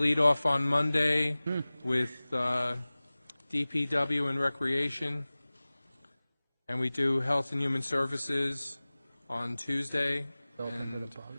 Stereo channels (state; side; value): inverted; both; correlation -0.99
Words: off on Monday with DPW and Recreation, and we do Health and Human Services on Tuesday, and